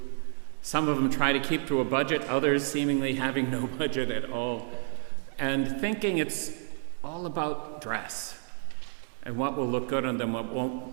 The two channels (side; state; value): left; silent; 58 dB below the other